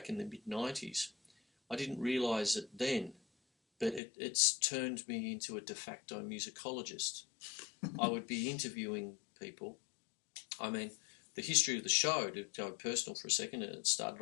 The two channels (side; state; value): right; drops out; at 4.0 s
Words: in the mid-90s, I didn't realise it then, but it's turned me into a de facto musicologist. I would be interviewing people. I mean, the history of the show, to go personal for a second, it started